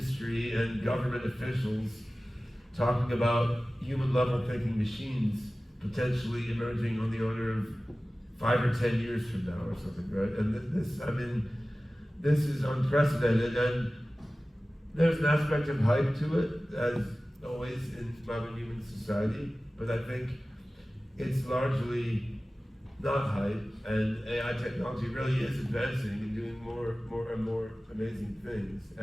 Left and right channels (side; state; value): both; normal; correlation 0.97